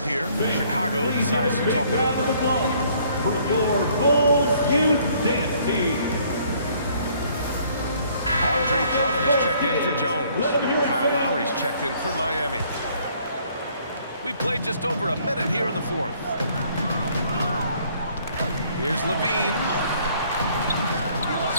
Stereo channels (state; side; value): inverted; both; correlation -0.62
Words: here. Chicago decides to talk it over. For your Bulls Youth Dance Team. Andre Drummond is checked in for Jones. Kyle Lowry's checked in for Miami. We played just over a minute here in the fourth. Here's Levine.